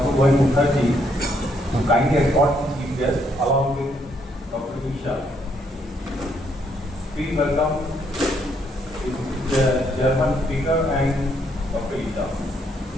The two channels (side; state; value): both; normal; correlation 0.72